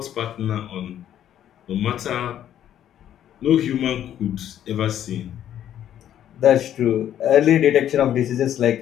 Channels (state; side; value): quieter; right; 10.8 dB